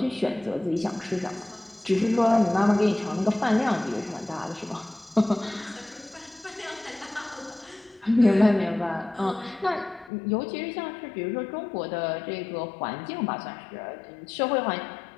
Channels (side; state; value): right; drops out; at 10.1 s